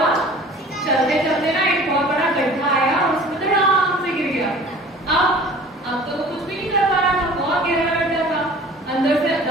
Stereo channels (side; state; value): both; normal; correlation 0.45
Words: चलते चलते ना एक बहुत बड़ा गड्ढा आया और उसमें धड़ाम से गिर गया। अब तो वो कुछ भी नहीं कर पा रहा था, बहुत गहरा गड्ढा था, अंदर से